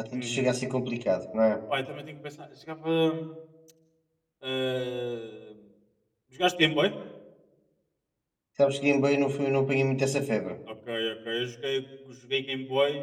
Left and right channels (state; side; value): identical; both; correlation 1.00